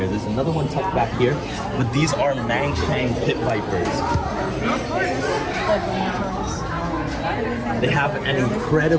There's another one tucked back here, but these are Mangshang pit vipers. They have an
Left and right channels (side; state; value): both; identical; correlation 1.00